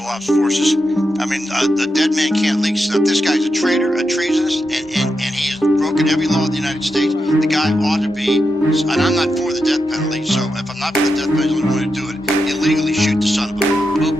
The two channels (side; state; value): both; normal; correlation 0.87